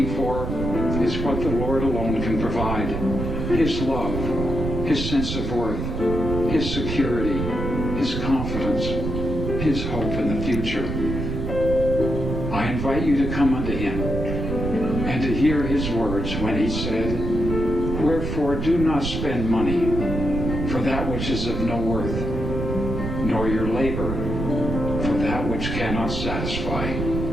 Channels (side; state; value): right; noise; rumble, 3 dB below the sound